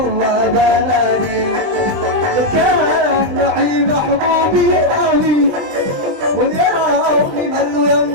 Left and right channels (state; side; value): late; left; 20 ms